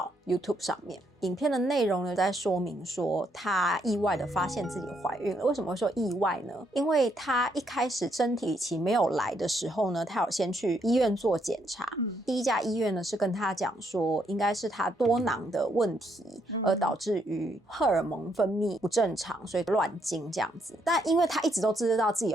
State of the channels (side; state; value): both; normal; correlation 0.74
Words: YouTube 上面。影片的内容呢，在说明说她意外的发现自己怀孕了。为什么会说意外呢？因为她一开始生理期没有来的时候呢，她有先去医院做检查。第一家医院呢是跟她讲说，应该是她多囊的问题，而导致于荷尔蒙分泌不正常，所以乱经这样子。但因为她一直都知道自己